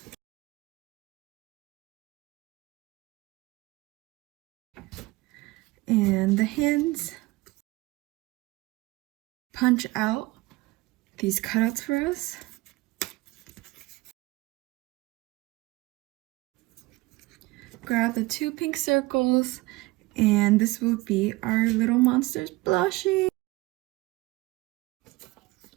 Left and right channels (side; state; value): left; quieter; 21.1 dB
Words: And the hands, punch out these cutouts for us. Grab the 2 pink circles, and this will be our little monster's blushing.